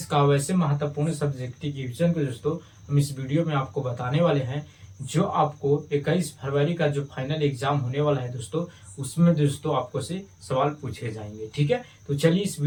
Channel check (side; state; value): both; identical; correlation 1.00